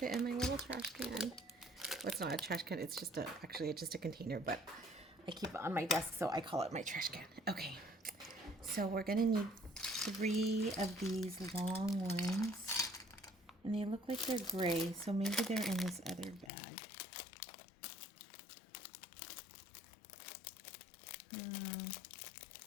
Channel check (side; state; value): right; drops out; at 16.5 s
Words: in my little trash can. Well, it's not a trash can, it's just actually just a container, but I keep it on my desk, so I call it my trash can. Okay, so we're gonna need 3 of these long ones, and they look like they're gray, so maybe they're in this other bag.